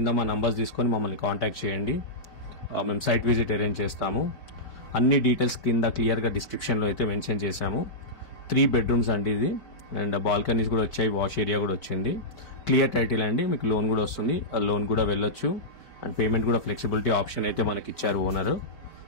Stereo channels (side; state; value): right; late; 4.7 ms